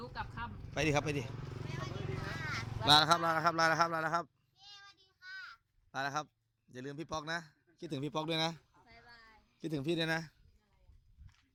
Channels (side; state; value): both; identical; correlation 1.00